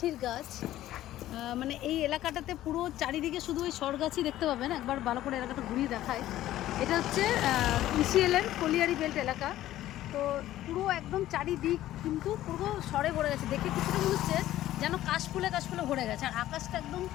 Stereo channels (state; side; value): quieter; right; 14.0 dB